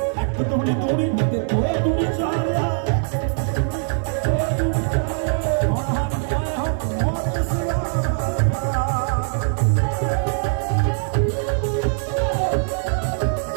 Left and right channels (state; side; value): silent; left; 58 dB below the other